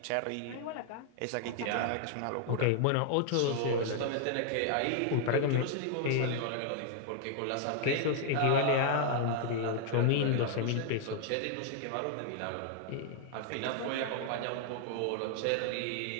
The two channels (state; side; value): different; both; correlation 0.00